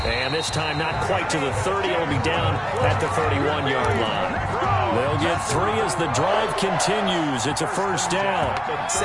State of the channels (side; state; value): both; identical; correlation 1.00